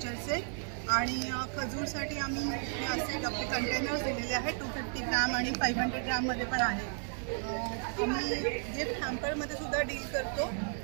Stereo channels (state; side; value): silent; left; 55 dB below the other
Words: आणि खजूरसाठी आम्ही हे असे आपले कंटेनर्स दिलेले आहेत 250 ग्राम आणि 500 ग्राममध्ये पण आहे. आम्ही गिफ्ट हॅम्परमध्ये सुद्धा डील करतो.